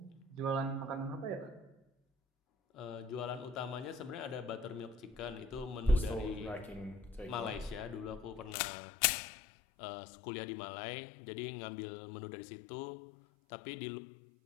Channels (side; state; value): right; drops out; at 8.6 s